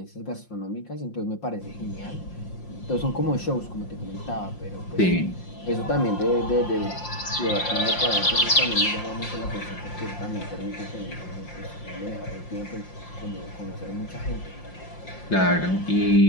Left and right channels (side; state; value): right; late; 5.7 ms